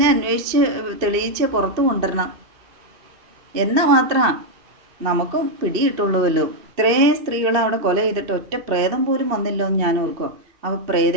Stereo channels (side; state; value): left; late; 3.0 ms